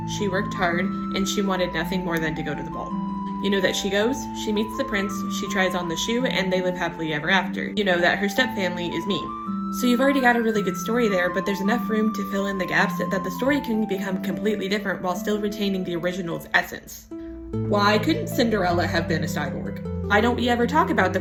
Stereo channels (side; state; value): both; identical; correlation 1.00